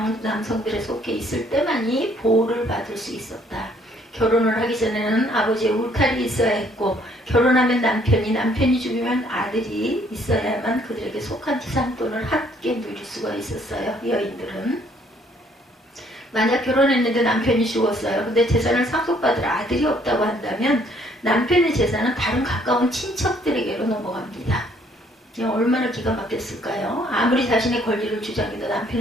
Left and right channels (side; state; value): both; normal; correlation 0.64